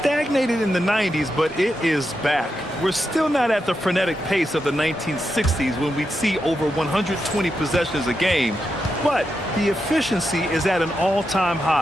in the 90s, but it is back. We're still not at the frenetic pace of the 1960s when we'd see over 120 possessions a game, but the efficiency is at an all-time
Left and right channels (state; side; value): normal; both; correlation 0.86